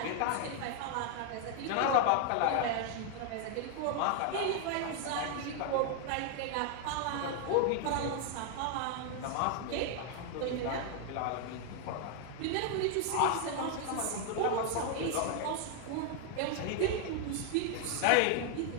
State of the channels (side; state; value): both; different; correlation 0.00